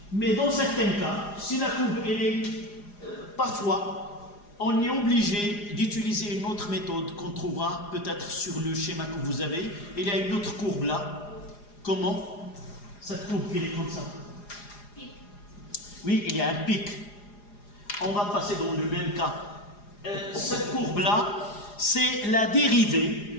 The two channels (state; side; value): late; right; 4.9 ms